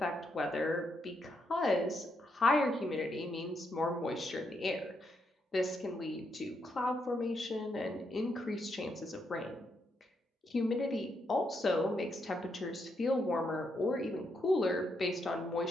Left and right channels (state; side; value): normal; both; correlation 0.79